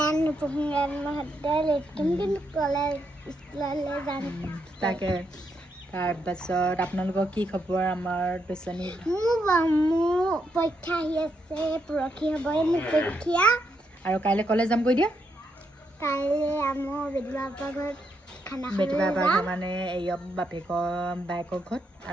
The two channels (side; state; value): both; normal; correlation 0.79